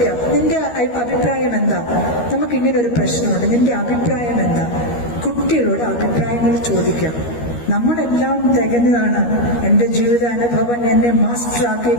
നിന്റെ അഭിപ്രായം എന്താ, നമുക്ക് ഇങ്ങനെ ഒരു പ്രശ്നമുണ്ട്, നിന്റെ അഭിപ്രായം എന്താ. കുട്ടികളോട് അഭിപ്രായങ്ങൾ ചോദിക്കാം. നമ്മളെല്ലാം തികഞ്ഞതാണ്, എന്റെ ജീവിതാനുഭവം എന്നെ മാസ്റ്റർ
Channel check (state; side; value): late; right; 13 ms